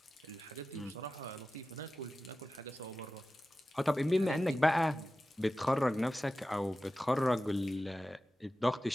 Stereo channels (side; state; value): both; normal; correlation 0.94